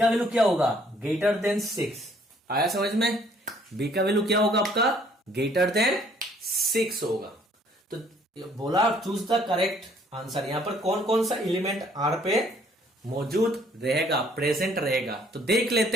वैल्यू क्या होगा, ग्रेटर देन 6, आया समझ में, B का वैल्यू क्या होगा आपका, ग्रेटर देन 6 होगा। तो बोला चूज द करेक्ट आंसर, यहां पर कौन कौन सा एलिमेंट R पे मौजूद रहेगा, प्रेजेंट रहेगा, तो देख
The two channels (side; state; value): both; normal; correlation 0.61